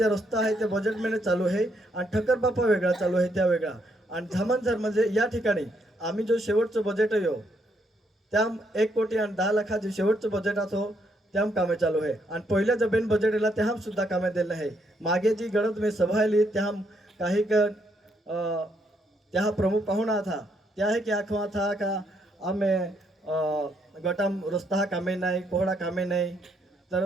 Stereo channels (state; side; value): normal; both; correlation 0.74